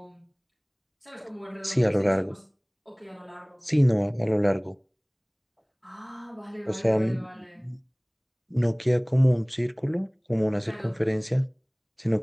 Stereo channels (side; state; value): both; identical; correlation 1.00